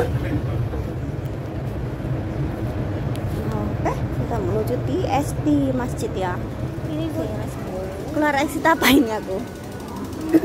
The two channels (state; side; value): identical; both; correlation 1.00